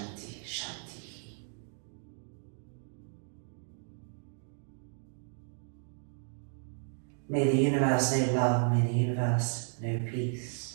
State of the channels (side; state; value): left; silent; 55 dB below the other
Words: Shanti. May the universe know love, may the universe know peace.